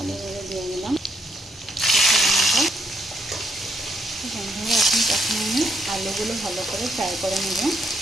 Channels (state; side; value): normal; both; correlation 0.74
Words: করে দিয়ে দিলাম। বন্ধুরা এখন আমি আলুগুলো ভালো করে ফ্রাই করে নেব।